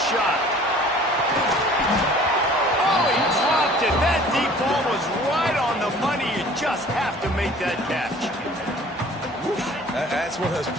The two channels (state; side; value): normal; both; correlation 0.49